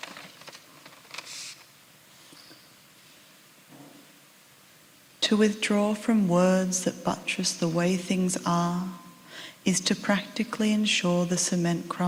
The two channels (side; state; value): both; identical; correlation 1.00